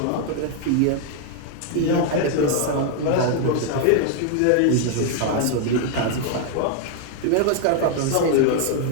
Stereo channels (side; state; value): both; different; correlation 0.00